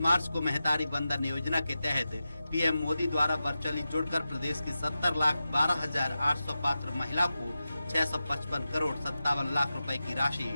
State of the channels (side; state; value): both; inverted; correlation -0.92